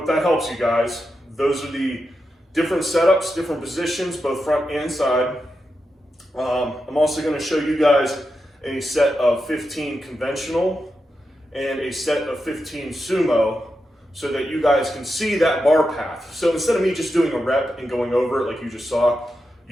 that helps you guys. Those are the different setups, different positions, both front and side. I'm also gonna show you guys a set of 15 conventional and a set of 15 sumo so that you guys can see that bar path. So instead of me just doing a rep and going over it like you just saw,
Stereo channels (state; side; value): normal; both; correlation 0.88